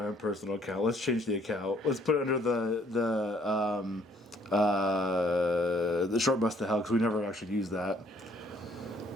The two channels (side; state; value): both; normal; correlation 0.63